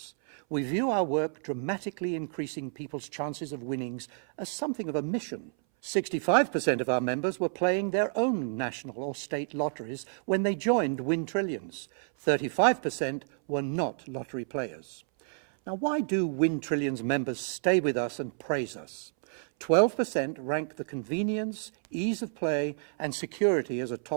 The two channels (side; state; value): left; silent; 58 dB below the other